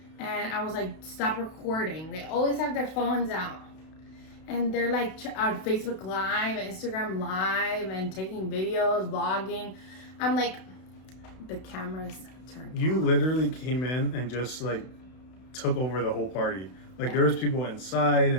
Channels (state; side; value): late; right; 32 ms